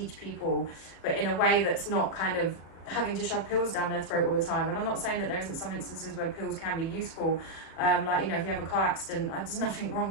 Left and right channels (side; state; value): right; late; 39 ms